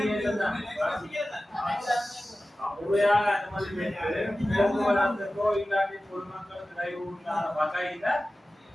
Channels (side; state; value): both; normal; correlation 0.95